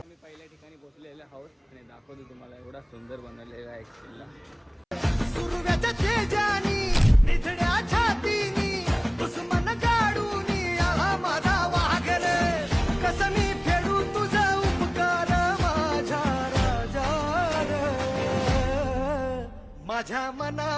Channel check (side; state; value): both; identical; correlation 1.00